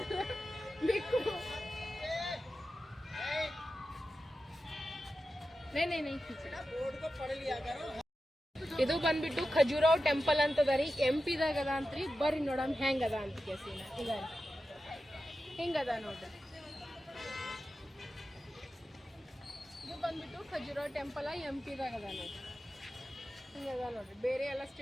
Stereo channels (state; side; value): normal; both; correlation 0.92